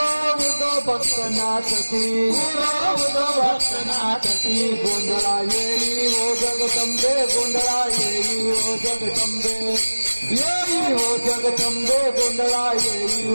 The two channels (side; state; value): both; inverted; correlation -1.00